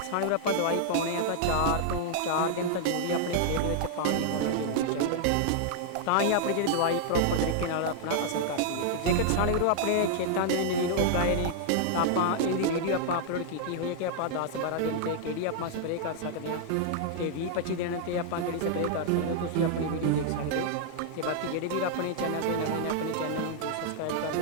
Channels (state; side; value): different; both; correlation -0.01